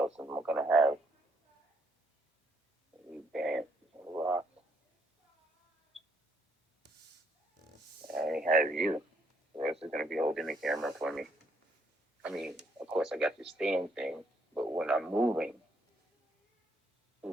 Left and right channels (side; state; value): both; normal; correlation 0.70